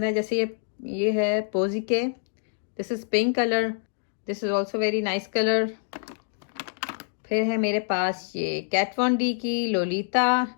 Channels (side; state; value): right; silent; digital silence